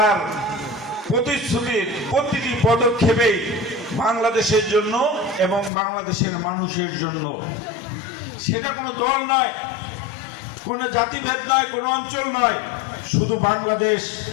প্রতিশ্রুতির প্রতিটি পদক্ষেপেই বাংলাদেশের জন্য এবং বাংলাদেশের মানুষের জন্য। সেটা কোনো দল নয়, কোনো জাতিভেদ নয়, কোনো অঞ্চল নয়, শুধু বাংলাদেশ।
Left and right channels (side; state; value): right; drops out; at 5.7 s